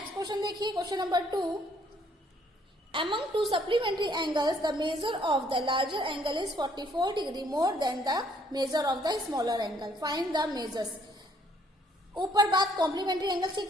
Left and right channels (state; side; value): normal; both; correlation 0.65